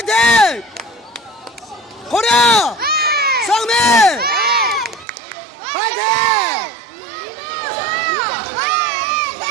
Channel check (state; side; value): drops out; left; at 5.1 s